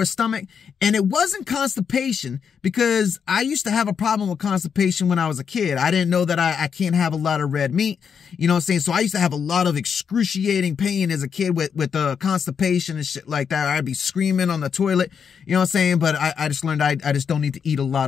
stomach. And it wasn't constipation because I used to have a problem with constipation when I was a kid. I didn't know that I can't have a lot of red meat, you know what I'm saying? So I used to have a lot of excruciating pain as a kid with constipation and shit like that. I'd be screaming on the toilet, you know what I'm saying? But I just learned I just don't need to eat a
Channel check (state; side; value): quieter; right; 6.9 dB